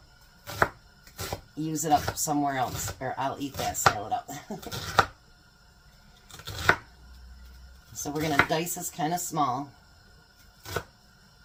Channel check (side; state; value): both; identical; correlation 1.00